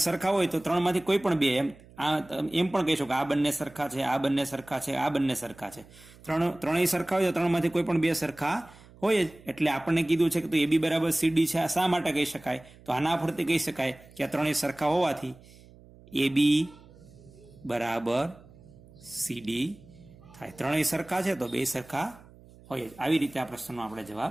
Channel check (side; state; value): right; noise; hum, 23 dB below the sound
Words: સરખા હોય તો ત્રણમાંથી કોઈ પણ બે, એમ પણ કહી શકો કે આ બંને સરખા છે, આ બંને સરખા છે, આ બંને સરખા છે. ત્રણેય સરખા હોય તો ત્રણમાંથી કોઈ પણ બે સરખા હોય જ. એટલે આપણને કીધું છે કે એ બી બરાબર સીડી છે. આ શા માટે કહી શકાય? તો આના પરથી કહી શકાય કે આ ત્રણેય સરખા હોવાથી એ બી બરાબર સીડી થાય. ત્રણેય સરખા છે તો બે સરખા હોય જ. આવી રીતે આ પ્રશ્નનો આપણે